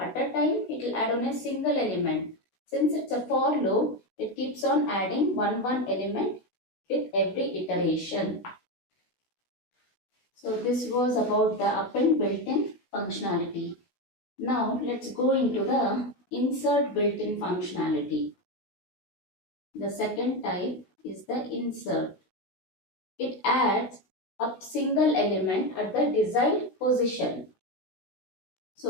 a time it will add on a single element. Since it's a for loop, it keeps on adding one element with every iteration. So this was about the append built-in functionality. Now let's go into the insert built-in functionality. The second type is the insert. It adds a single element at the desired position.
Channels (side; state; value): right; late; 17 ms